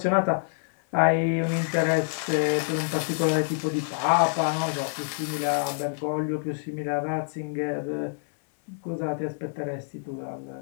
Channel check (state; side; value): silent; right; 60 dB below the other